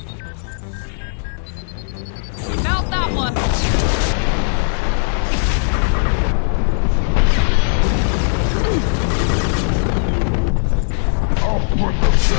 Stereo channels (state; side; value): silent; right; 61 dB below the other